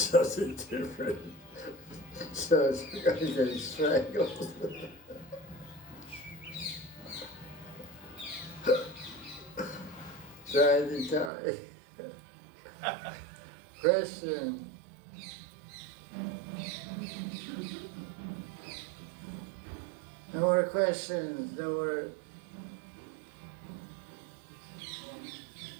different. So it's going to get strangled. Trying to die. Question. No more questions, no more.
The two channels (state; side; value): drops out; left; at 11.3 s